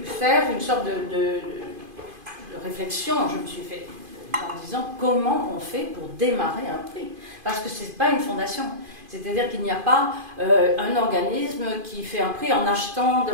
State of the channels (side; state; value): left; late; 2.5 ms